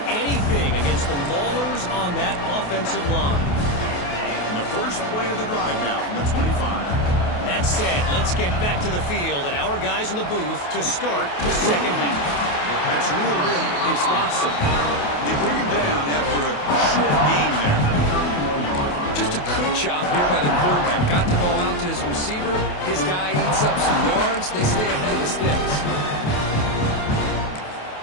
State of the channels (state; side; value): late; right; 28 ms